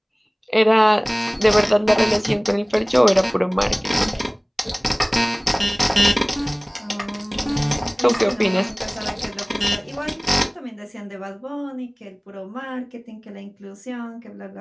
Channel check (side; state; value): both; identical; correlation 1.00